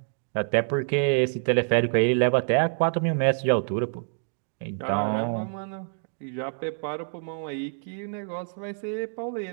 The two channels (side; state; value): left; silent; digital silence